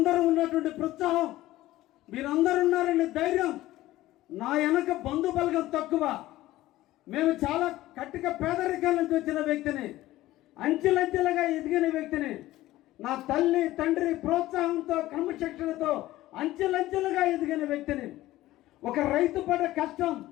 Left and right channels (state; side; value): quieter; right; 16.1 dB